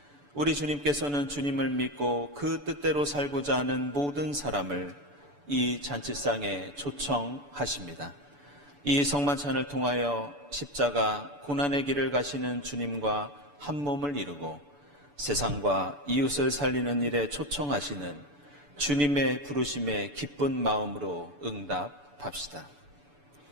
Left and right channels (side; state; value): left; late; 6.9 ms